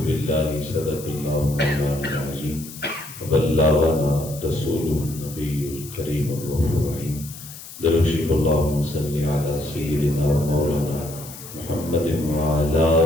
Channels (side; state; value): left; noise; hiss, 14 dB below the sound